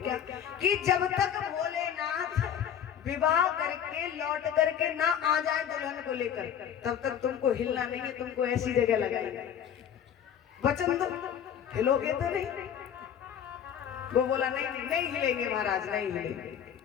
कि जब तक भोलेनाथ विवाह करके लौट करके ना आ जाए दुल्हन को लेकर, तब तक तुमको हिलना नहीं है, तुमको ऐसी जगह लगाएंगे। वचन दो, हिलोगे तो नहीं? वो बोला नहीं हिलेंगे महाराज, नहीं हिलेंगे।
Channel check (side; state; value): right; quieter; 8.9 dB